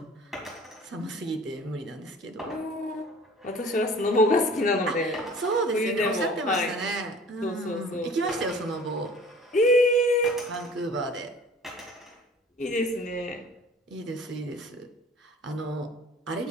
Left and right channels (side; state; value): both; normal; correlation 0.47